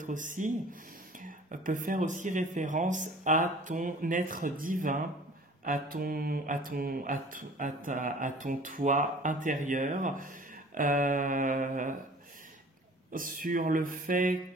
faire aussi référence à ton être divin, à ton toi intérieur, sur le fait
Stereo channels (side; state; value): both; normal; correlation 0.47